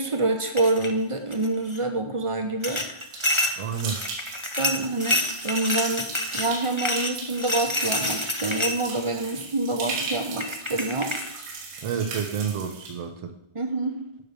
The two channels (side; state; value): left; late; 1.4 ms